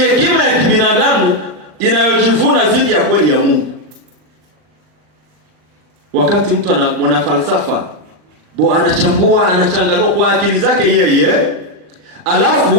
ya kibinadamu inayojivuna dhidi ya kweli ya Mungu. Wakati mtu mwana falsafa anachambua, anachanganua kwa akili zake yeye,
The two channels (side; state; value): left; late; 39 ms